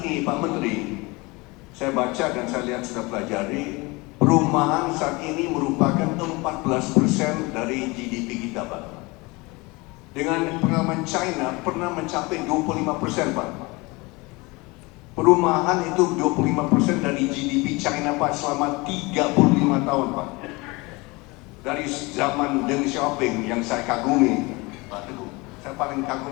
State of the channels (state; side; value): quieter; right; 24.8 dB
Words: Pak Menteri, saya baca dan saya lihat sudah pelajari, perumahan saat ini merupakan 14% dari GDP kita, Pak. Dengan pengalaman China pernah mencapai 25%, Pak. Perumahan itu 25% dari GDP China, Pak, selama 35 tahun, Pak. Dari zaman Deng Xiaoping yang saya kagumi, Pak Teguh. Saya paling